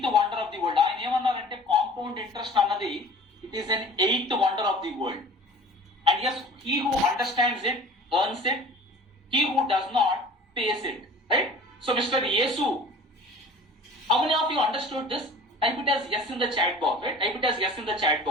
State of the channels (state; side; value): normal; both; correlation 0.44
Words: wonder of the world. ఆయన ఏమన్నారంటే కాంపౌండ్ ఇంట్రెస్ట్ అన్నది it is an 8th wonder of the world. And yes, he who understands it earns it. He who does not pays it. Right? So, Mr. Yesu, how many of you understood this? Type it as yes in the chat box. Right? Type it as yes in the chat